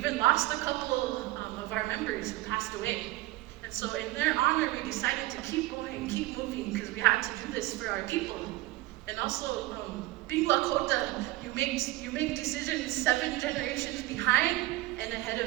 lost a couple of our members who passed away. And so in their honor, we decided to keep going, keep moving, because we had to do this for our people. And also, being Lakota, you make decisions 7 generations behind and ahead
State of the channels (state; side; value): quieter; left; 18.4 dB